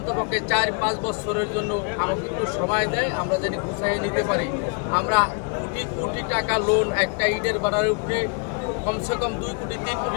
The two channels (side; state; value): right; quieter; 35.7 dB